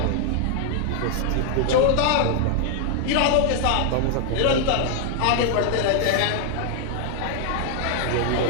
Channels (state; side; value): different; both; correlation 0.00